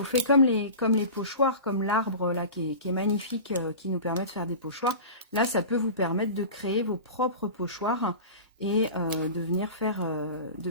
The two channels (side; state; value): both; inverted; correlation -0.34